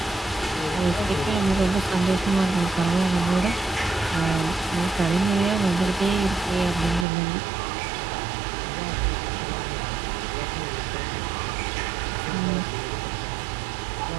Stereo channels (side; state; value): left; drops out; at 7.1 s